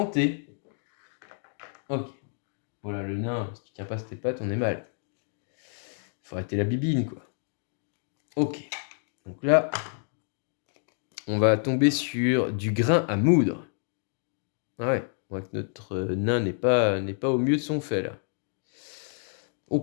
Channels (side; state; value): right; silent; 59 dB below the other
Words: Ok. Voilà, le nain, si tu tiens pas sur tes pattes, on est mal. Faut arrêter la bibine, quoi. Ok. Donc là, on va tomber sur du grain à moudre. Ah ouais, on voit que notre nain n'est pas au mieux de son fait, là.